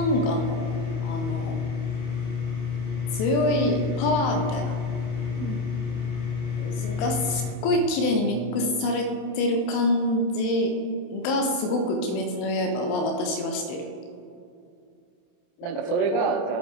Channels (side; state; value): right; late; 28 ms